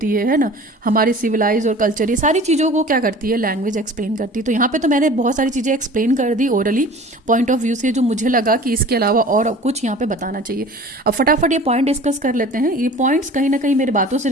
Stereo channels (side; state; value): both; normal; correlation 0.43